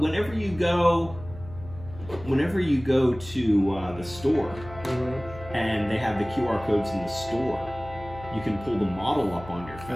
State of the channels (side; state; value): left; noise; hum, 16 dB below the sound